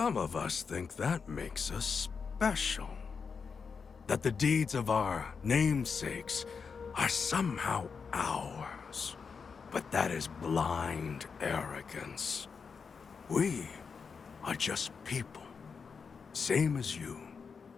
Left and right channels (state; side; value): quieter; right; 5.6 dB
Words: of us think that makes us special. That the deeds of our namesakes are somehow ours. But that is blind arrogance. We are just people. Same as you.